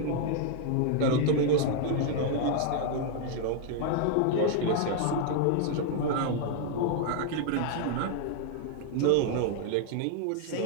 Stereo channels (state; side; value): different; both; correlation 0.00